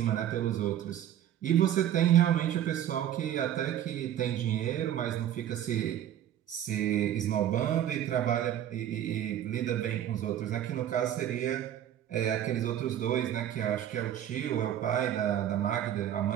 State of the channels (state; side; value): quieter; left; 11.0 dB